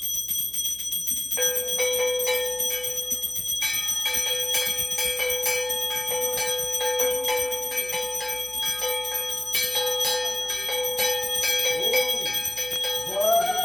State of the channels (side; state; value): left; noise; hum, 25 dB below the sound